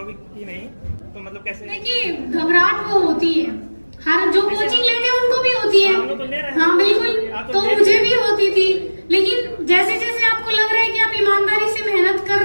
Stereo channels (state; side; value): inverted; both; correlation -1.00